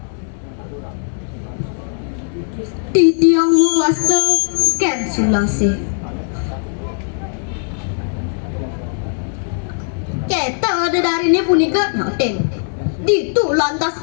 di tiang muasta ken sulase keta ada dari ini punika nyoten ditu lantas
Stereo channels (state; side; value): silent; right; digital silence